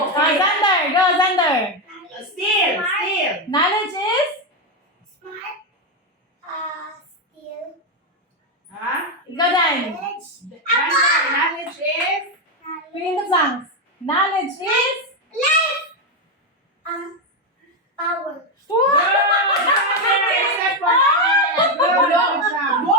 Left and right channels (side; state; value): both; normal; correlation 0.06